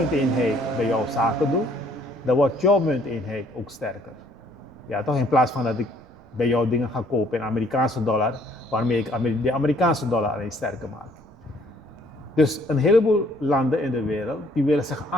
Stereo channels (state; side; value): noise; right; rumble, 27 dB below the sound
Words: bij jou zaken doe, dan wordt jouw munteenheid ook sterker. Ja, toch? In plaats van dat ik bij jou dingen ga kopen in Amerikaanse dollar, waarmee ik de Amerikaanse dollar alleen sterker maak. Dus een heleboel landen in de wereld die willen zich